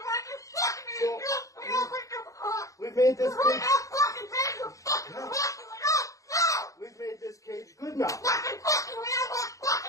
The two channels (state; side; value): late; right; 0.16 ms